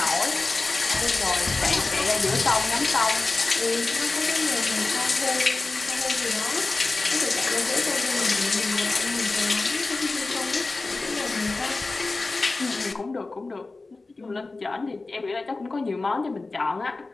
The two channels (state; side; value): quieter; right; 3.5 dB